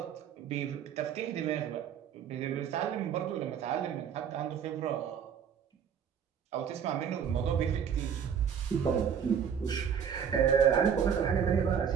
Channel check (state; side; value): quieter; left; 7.8 dB